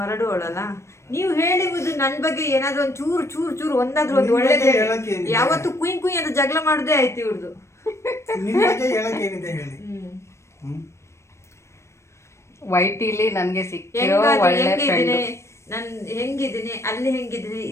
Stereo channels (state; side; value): late; right; 0.13 ms